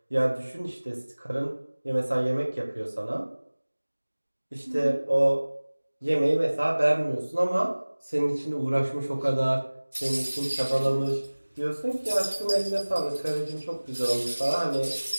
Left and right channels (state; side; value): inverted; both; correlation -1.00